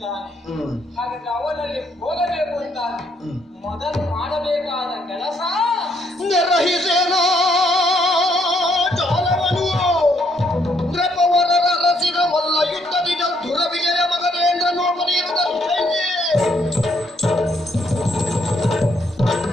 ಹಾಗಾದ್ರೆ ಅವನಲ್ಲಿ ಹೋಗಬೇಕು ಅಂತ ಮೊದಲು ಮಾಡಬೇಕಾದ ಸಹಿಸೇನೋ ಜಾಲವನು ನೃಪವರರ ರಸಿದ ಮಲ್ಲ ಯುದ್ಧದಿ ದುರ ವಿಜಯ ಮಗನೇಂದ್ರ ನೋಡಲಿರುವುದ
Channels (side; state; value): both; normal; correlation 0.71